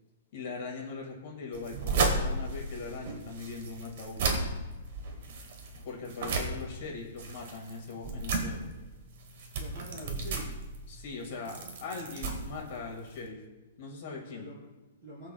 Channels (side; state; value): both; inverted; correlation -0.33